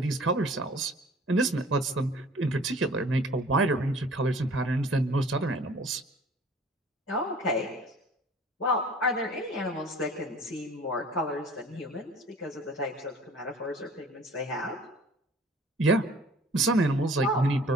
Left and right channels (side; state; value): both; normal; correlation 0.49